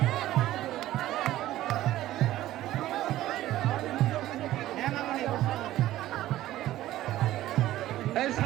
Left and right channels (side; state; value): left; quieter; 14.6 dB